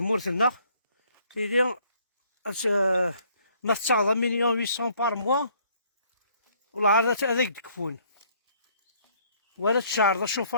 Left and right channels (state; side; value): inverted; both; correlation -0.63